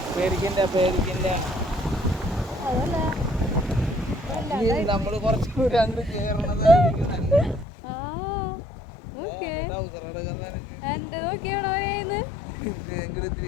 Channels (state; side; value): drops out; right; at 7.7 s